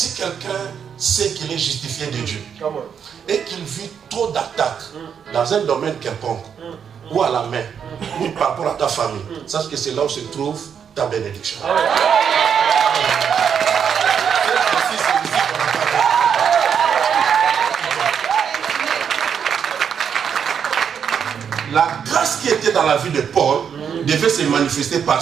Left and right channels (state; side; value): quieter; left; 7.5 dB